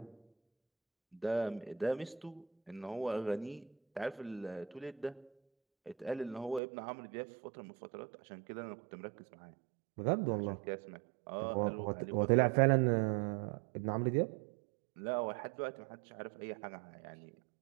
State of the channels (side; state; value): left; drops out; at 6.6 s